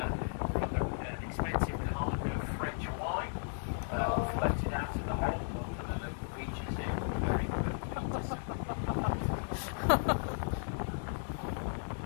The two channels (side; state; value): right; silent; 54 dB below the other